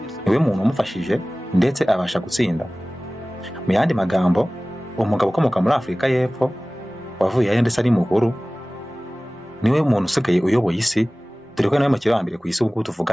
Niwe muntu umufashije ndetse abasha gutsinda. Mu yandi magambo, umugabo ukomoka muri Afurika y'Epfo wavuye aho ndetse ari mukuru niwe muntu usigaye uyoboye isi, dore ko nawe makiro wa mbere ku isi ubu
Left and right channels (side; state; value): both; normal; correlation 0.98